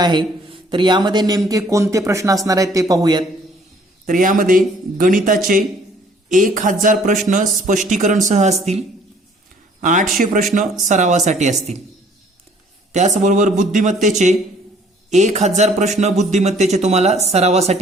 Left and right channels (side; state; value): both; normal; correlation 0.58